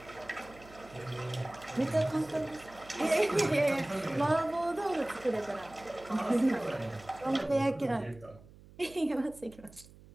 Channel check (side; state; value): right; noise; hum, 22 dB below the sound